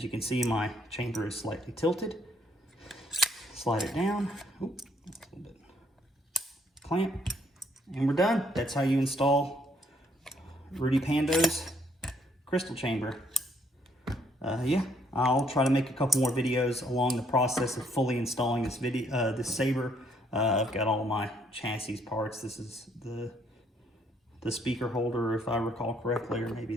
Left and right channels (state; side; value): normal; both; correlation 0.68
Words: you can see, my chamber is slightly tilted. Slide it down. Oop, that's a little bit. Clamp. And we're done. That's how you install Rudy Pando's crystal chamber. Yeah, I'll try to make a couple more videos along the process of fully installing this saber. I've got all my chassis parts. This is the speaker holder, if I recall correctly, or maybe